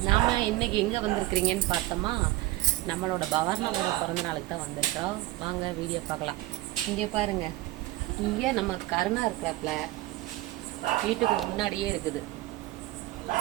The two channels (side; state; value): left; quieter; 17.9 dB